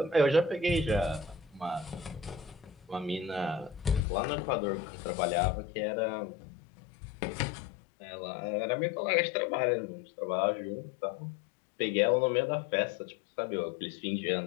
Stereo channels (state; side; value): drops out; right; at 4.0 s